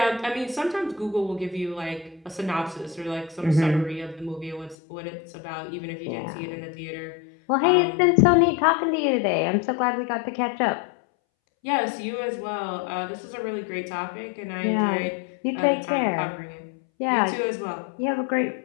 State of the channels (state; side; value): drops out; right; at 4.8 s